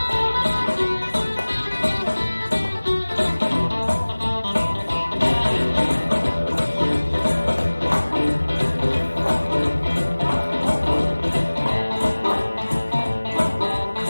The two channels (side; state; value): both; inverted; correlation -1.00